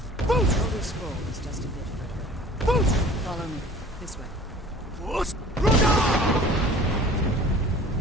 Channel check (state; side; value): normal; both; correlation 0.47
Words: The Elder Scroll is just a bit further. Follow me. This way.